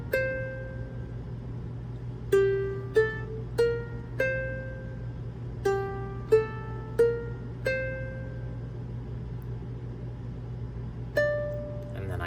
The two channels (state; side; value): identical; both; correlation 1.00